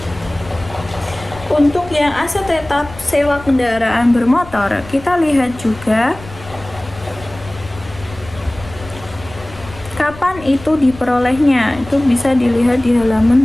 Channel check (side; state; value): left; noise; rumble, 17 dB below the sound